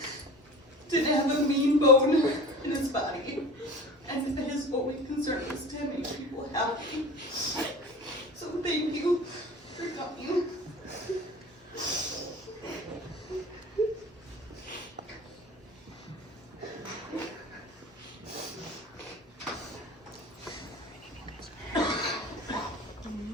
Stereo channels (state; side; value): normal; both; correlation 0.37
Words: didn't have a mean bone in his body. And his only concern was to make people happy. So thank you for coming.